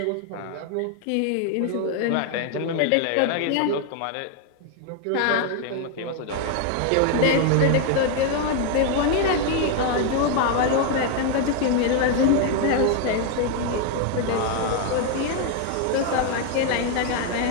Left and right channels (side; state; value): both; different; correlation 0.00